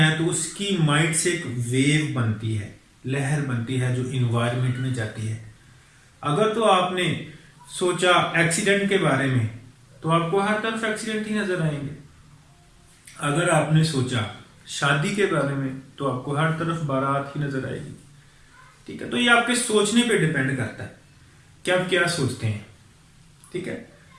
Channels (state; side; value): identical; both; correlation 1.00